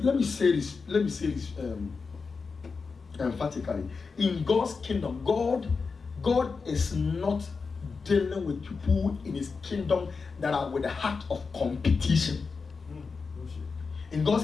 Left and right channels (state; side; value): quieter; right; 4.8 dB